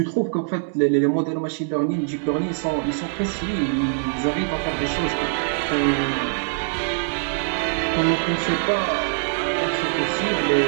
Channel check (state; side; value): silent; left; 63 dB below the other